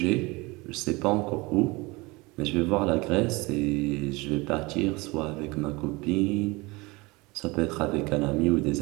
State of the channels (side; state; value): left; quieter; 24.2 dB